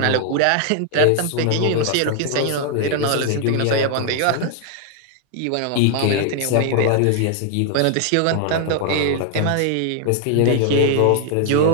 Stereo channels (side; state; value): both; different; correlation 0.00